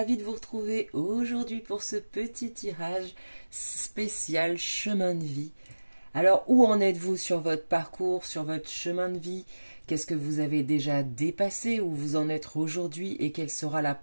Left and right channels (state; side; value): inverted; both; correlation -1.00